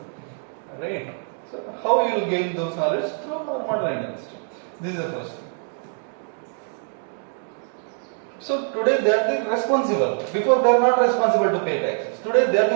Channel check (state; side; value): silent; left; 57 dB below the other